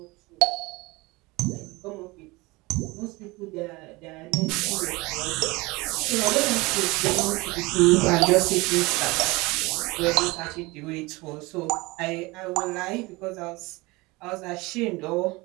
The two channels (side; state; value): left; quieter; 23.2 dB